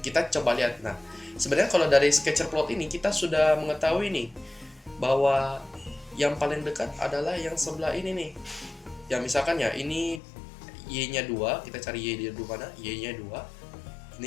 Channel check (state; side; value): drops out; right; at 10.2 s